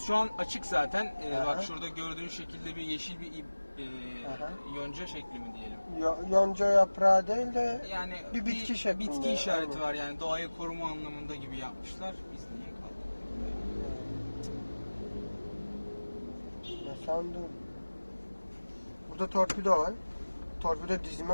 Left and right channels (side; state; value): both; inverted; correlation -1.00